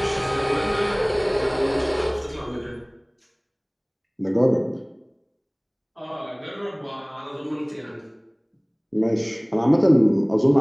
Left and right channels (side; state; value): both; identical; correlation 1.00